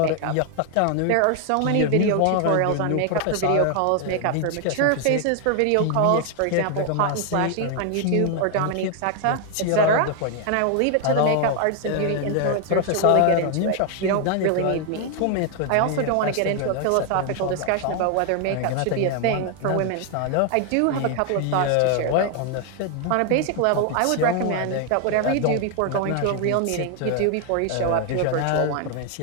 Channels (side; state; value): both; different; correlation 0.00